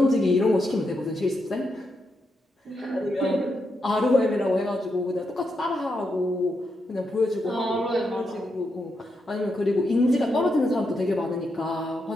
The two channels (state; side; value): normal; both; correlation 0.83